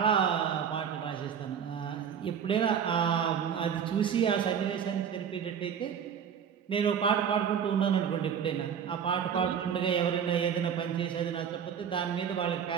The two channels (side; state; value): left; quieter; 7.9 dB